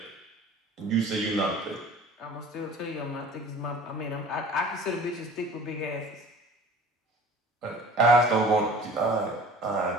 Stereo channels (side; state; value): both; normal; correlation 0.44